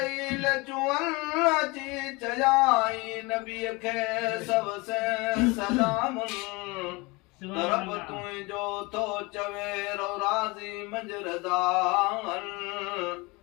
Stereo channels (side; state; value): right; quieter; 25.4 dB